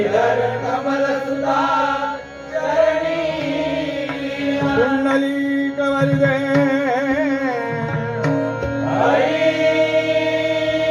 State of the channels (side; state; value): both; identical; correlation 1.00